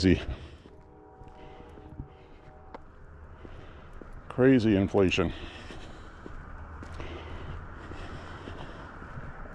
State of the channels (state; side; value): identical; both; correlation 1.00